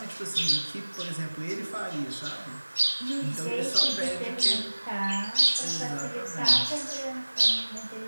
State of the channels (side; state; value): both; inverted; correlation -1.00